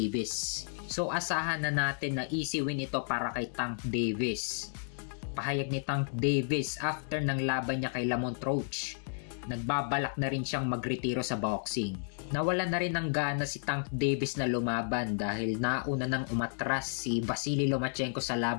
So asahan na natin na easy win ito para kay Tank Davis. Pahayag ni Tank Davis after ng laban niya kay Lamont Roach, nagbabalak na rin siyang magretiro sa boxing. Nawala na rin ng gana si Tank Davis na lumaban dahil nauna nang umatras si Vasily Lomachenko sa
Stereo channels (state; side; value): silent; right; digital silence